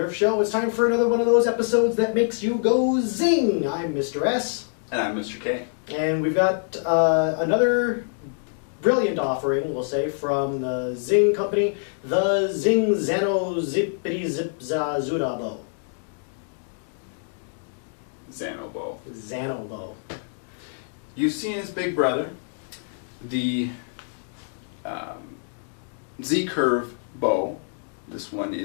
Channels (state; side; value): silent; right; digital silence